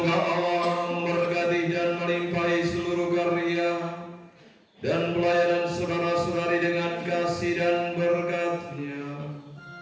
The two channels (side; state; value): both; identical; correlation 1.00